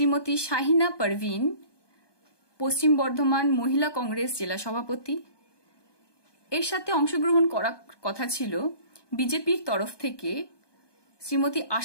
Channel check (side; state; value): right; late; 1.2 ms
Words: শাহিনা পারভিন, পশ্চিম বর্ধমান মহিলা কংগ্রেস জেলা সভাপতি। এর সাথে অংশগ্রহণ করার কথা ছিল বিজেপির তরফ থেকে শ্রীমতী